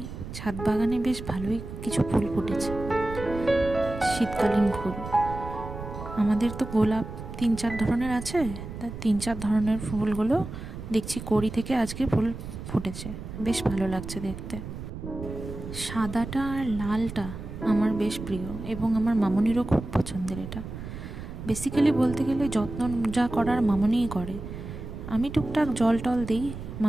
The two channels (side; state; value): right; noise; rumble, 10 dB below the sound